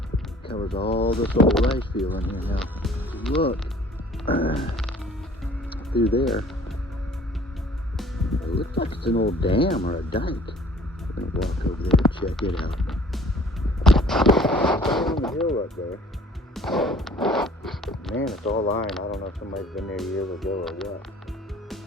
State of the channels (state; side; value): normal; both; correlation 0.52